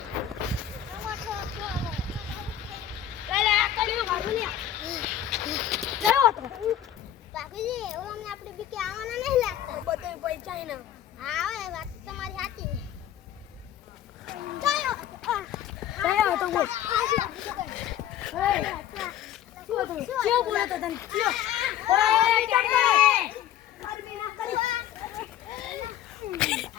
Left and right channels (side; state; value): right; quieter; 10.8 dB